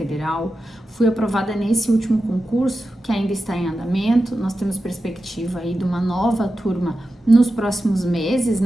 fui aprovada nesse último concurso que ainda está em andamento. Nós temos perspectiva aí de uma nova turma nos próximos meses,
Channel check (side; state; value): both; normal; correlation 0.92